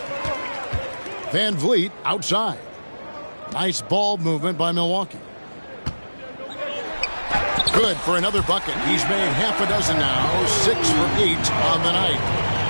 Van Vliet outside. Nice ball movement by Milwaukee. Good for another bucket. He's made half a dozen now. 6 for 8 on the night.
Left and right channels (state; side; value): inverted; both; correlation -1.00